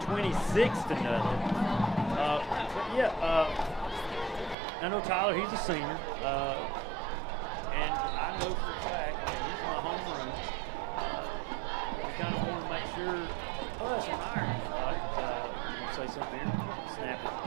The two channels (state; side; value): drops out; left; at 4.5 s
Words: 26-0. But yeah, I know Tyler. He's a senior, and I know for a fact, I mean, he's in my homeroom. We kind of want to make sure us on our end, I'm gonna say something here. Snap it